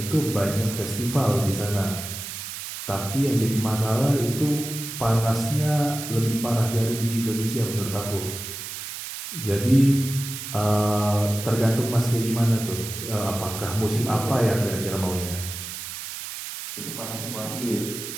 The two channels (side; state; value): right; noise; hiss, 8 dB below the sound